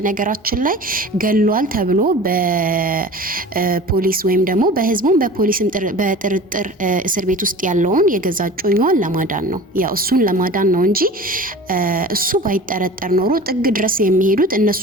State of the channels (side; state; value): both; normal; correlation 0.39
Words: ላይ ገሏል ተብሎ በፖሊስ ወይም ደግሞ በህዝቡም በፖሊስም በጥርጥር እስር ቤት ውስጥ ያለውን የገዛ እጮኛዋን ለማዳን ነው። ያው እሱን ለማዳን ነው እንጂ እሱ ባይጠረጠር ኖሮ ጥግ ድረስ የሚሄዱት እነሱ